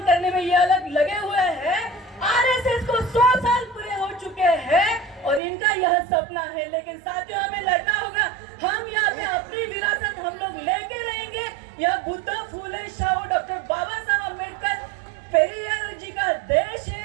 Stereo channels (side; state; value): left; drops out; at 5.4 s